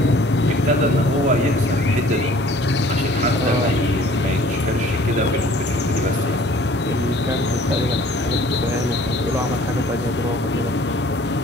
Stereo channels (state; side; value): normal; both; correlation 0.52